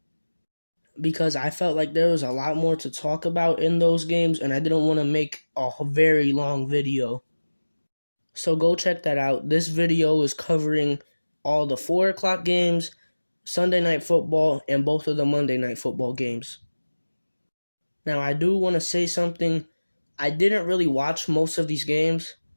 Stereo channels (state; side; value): inverted; both; correlation -1.00